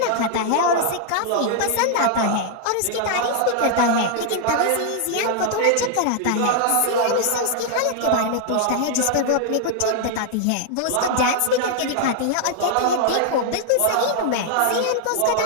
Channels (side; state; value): both; different; correlation 0.00